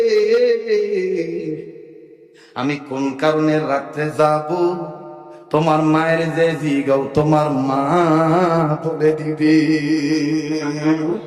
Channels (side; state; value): both; identical; correlation 1.00